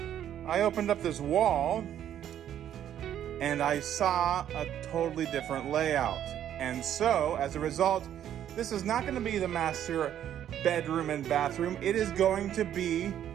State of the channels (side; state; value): left; quieter; 10.6 dB